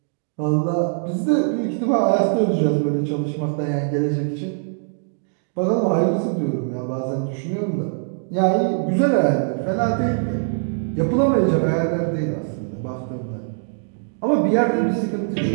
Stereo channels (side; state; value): left; silent; 64 dB below the other